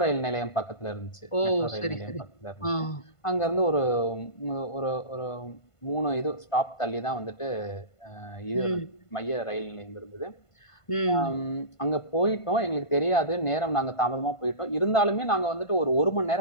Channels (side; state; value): right; late; 1.5 ms